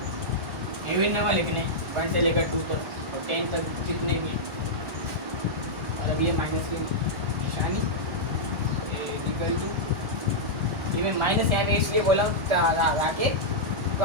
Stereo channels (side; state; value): left; late; 1.4 ms